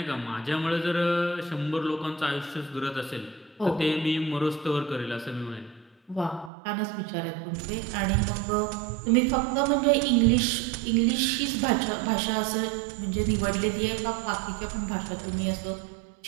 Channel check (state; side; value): drops out; left; at 6.5 s